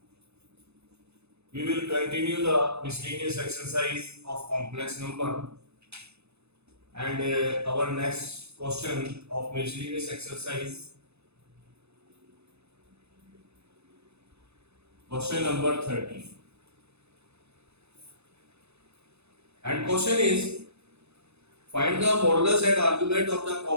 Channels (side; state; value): left; late; 0.80 ms